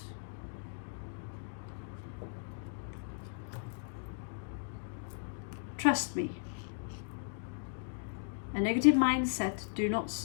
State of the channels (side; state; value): right; silent; digital silence